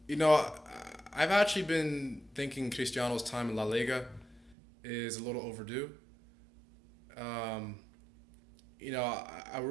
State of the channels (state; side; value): drops out; left; at 4.5 s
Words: you know, I- I've actually been thinking Cristiano's time in La Liga is a little overdue. Um, I